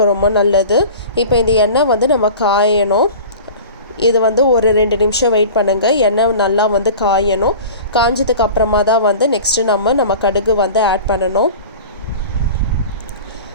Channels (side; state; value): both; inverted; correlation -0.38